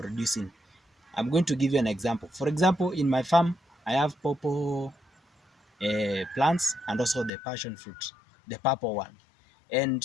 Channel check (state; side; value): drops out; right; at 7.3 s